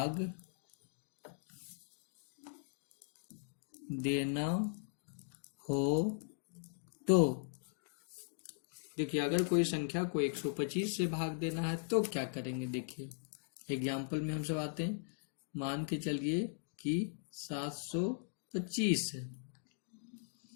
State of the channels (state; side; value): silent; right; digital silence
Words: देना हो तो देखिए, अगर कोई संख्या को 125 से भाग देना है तो क्या करेंगे। देखिए एग्जाम्पल में हम सब आते हैं। मान के चलिए कि 725 है,